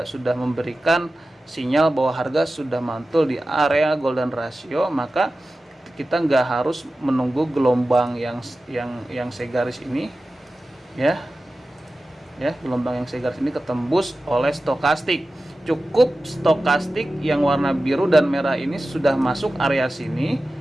sudah memberikan sinyal bahwa harga sudah mantul di area golden ratio. Maka kita nggak harus menunggu gelombang yang segaris ini ya, gelombang yang segaris ini ketembus oleh stokastik. Cukup stokastik yang warna biru dan merah ini sudah masuk area sini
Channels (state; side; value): normal; both; correlation 0.95